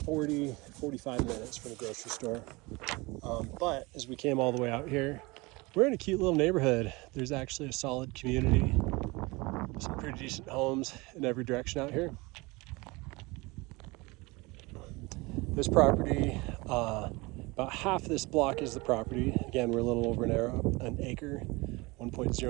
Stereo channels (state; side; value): quieter; left; 24.3 dB